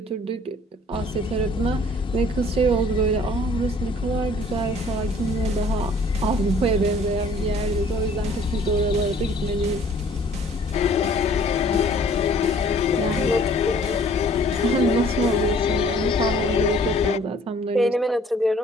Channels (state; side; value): normal; both; correlation 0.55